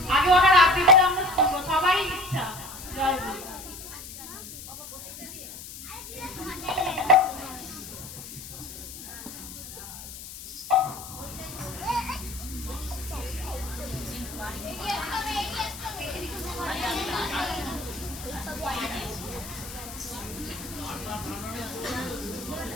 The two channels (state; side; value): noise; left; hiss, 12 dB below the sound